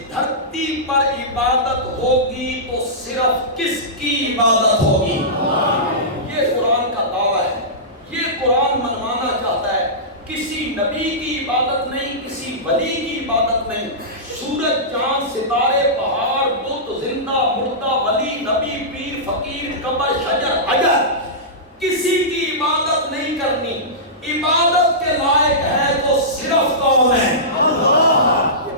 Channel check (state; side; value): normal; both; correlation -0.17